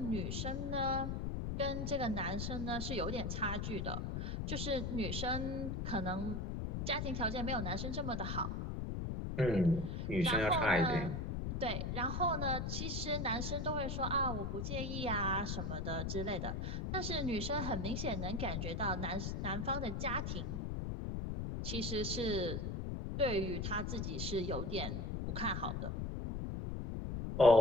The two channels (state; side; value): noise; left; rumble, 2 dB below the sound